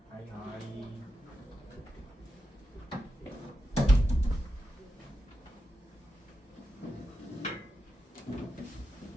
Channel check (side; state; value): both; normal; correlation 0.89